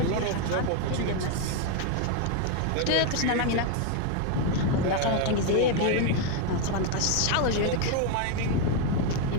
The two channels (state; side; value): different; both; correlation 0.01